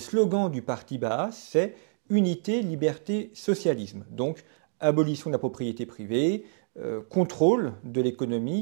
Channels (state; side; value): silent; left; digital silence